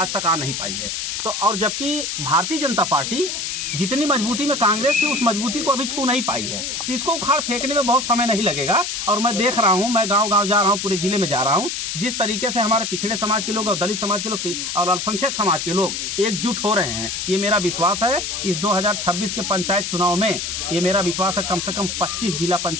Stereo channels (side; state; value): left; noise; hiss, 3 dB below the sound